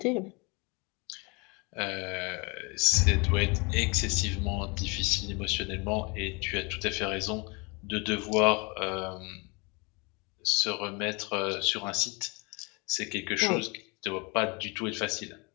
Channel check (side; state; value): right; quieter; 29.1 dB